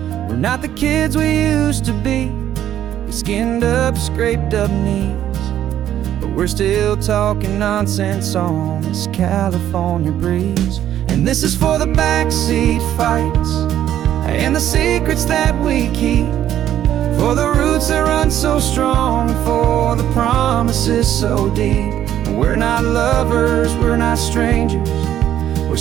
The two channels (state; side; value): quieter; left; 11.3 dB